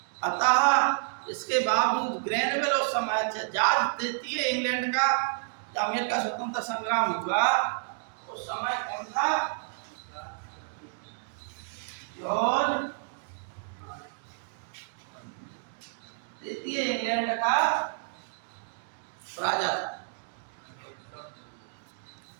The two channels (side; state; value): left; silent; digital silence